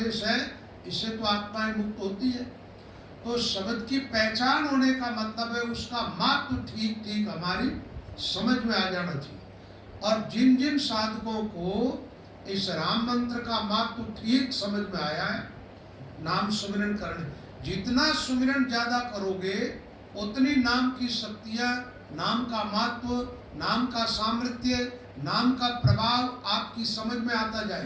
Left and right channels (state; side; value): identical; both; correlation 1.00